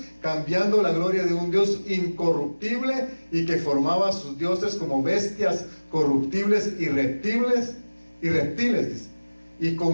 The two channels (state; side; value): inverted; both; correlation -1.00